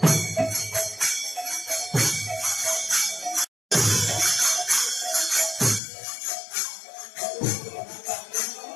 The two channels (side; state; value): right; drops out; at 5.8 s